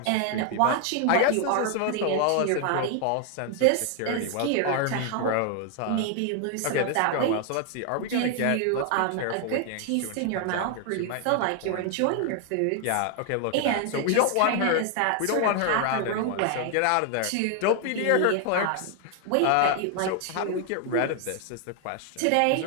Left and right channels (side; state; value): both; different; correlation 0.00